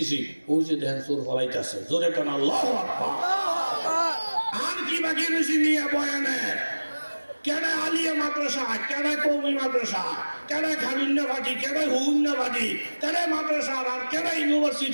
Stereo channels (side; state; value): both; inverted; correlation -1.00